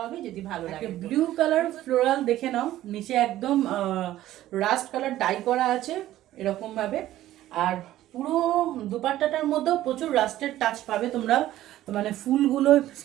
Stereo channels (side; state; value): left; quieter; 14.1 dB